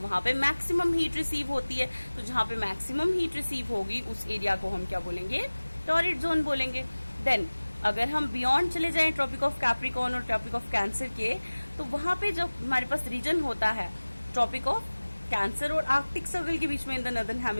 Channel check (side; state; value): both; inverted; correlation -1.00